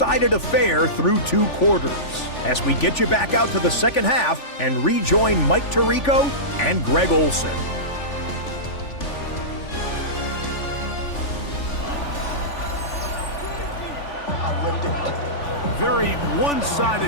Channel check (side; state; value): right; late; 3.4 ms